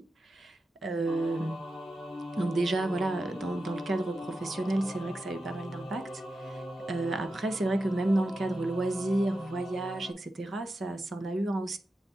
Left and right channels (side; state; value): both; normal; correlation 0.90